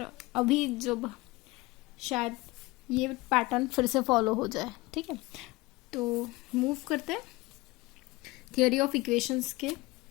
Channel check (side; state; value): right; quieter; 21.2 dB